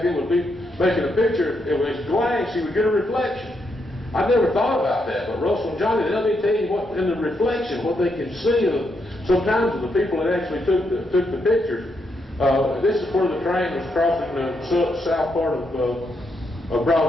then would be making a picture, it was glance, you would get a reflection. I never thought about that, but Russell and Johnny, they'll be telling you what in the reflection, what they can see sometimes of the people that actually took the pictures. This is where the train was crossing the south part of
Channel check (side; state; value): both; normal; correlation 0.80